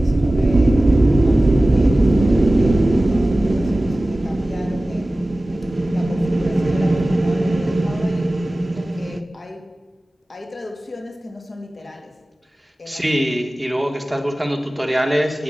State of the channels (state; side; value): normal; both; correlation 0.97